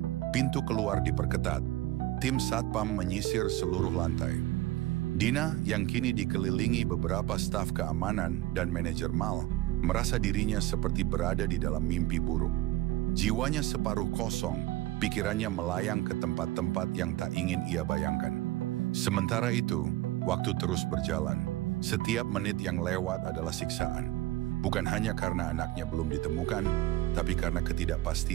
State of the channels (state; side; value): quieter; left; 16.7 dB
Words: Pintu keluar diperketat. Tim Satpam menyisir seluruh lantai. Dina yang kini dikelilingi beberapa staf keamanan dan manajer Mal merasa dirinya seperti berada di dalam mimpi buruk. Jiwanya separuh kosong, pikirannya melayang ke tempat-tempat yang tak ingin ia bayangkan. Sementara itu, waktu terus berjalan. Setiap menit yang lewat adalah siksaan. Bukan hanya karena anaknya belum ditemukan, tapi karena